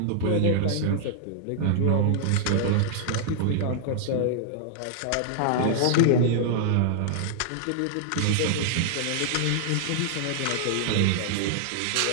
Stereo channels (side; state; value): both; different; correlation -0.01